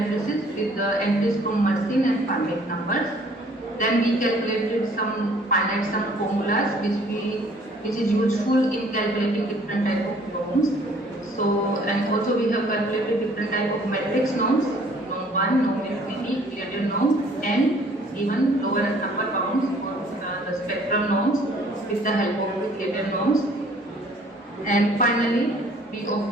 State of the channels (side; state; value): both; normal; correlation 0.57